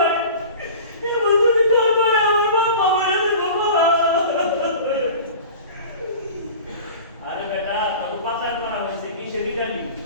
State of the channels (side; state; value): both; inverted; correlation -0.39